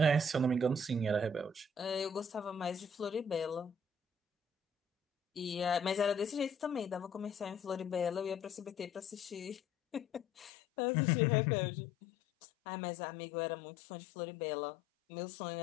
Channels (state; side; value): drops out; right; at 10.5 s